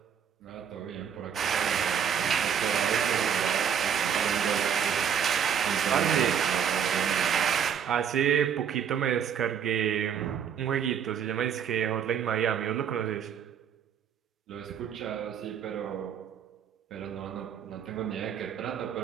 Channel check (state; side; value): quieter; left; 8.1 dB